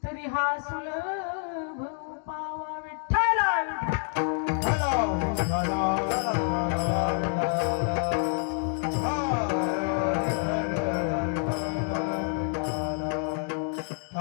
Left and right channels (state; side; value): silent; right; 57 dB below the other